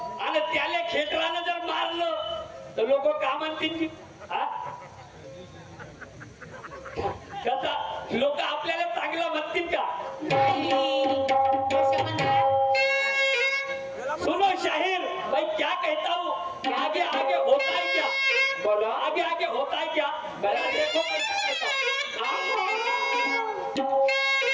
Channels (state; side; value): identical; both; correlation 1.00